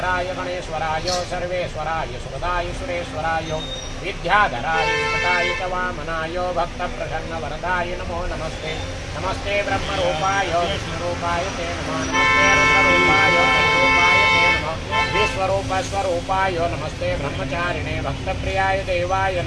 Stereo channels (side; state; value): both; identical; correlation 1.00